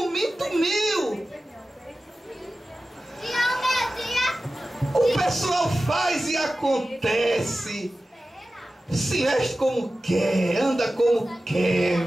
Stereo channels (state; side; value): normal; both; correlation 0.95